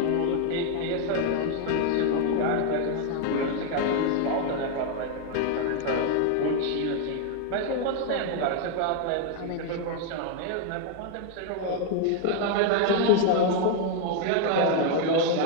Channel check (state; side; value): different; both; correlation 0.00